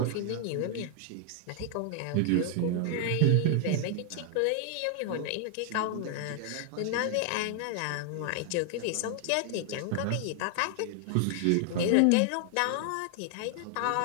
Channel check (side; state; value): both; different; correlation 0.00